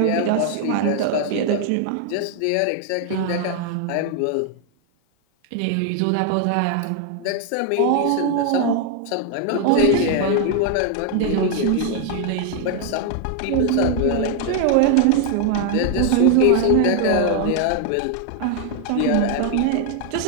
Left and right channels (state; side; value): different; both; correlation 0.00